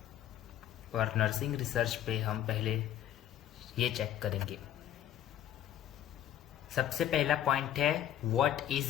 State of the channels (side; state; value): right; quieter; 11.2 dB